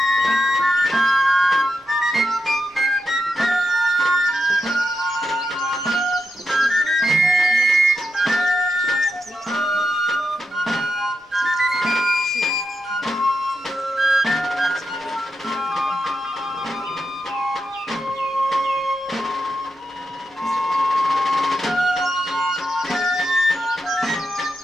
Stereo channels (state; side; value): normal; both; correlation 0.85